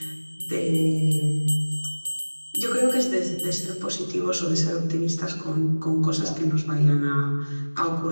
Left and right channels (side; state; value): both; inverted; correlation -1.00